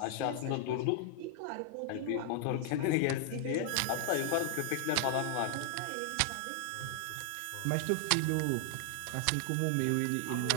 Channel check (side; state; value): both; different; correlation 0.00